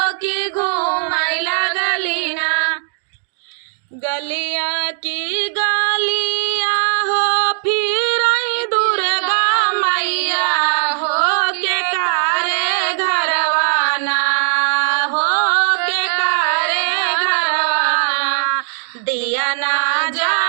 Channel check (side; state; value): left; silent; digital silence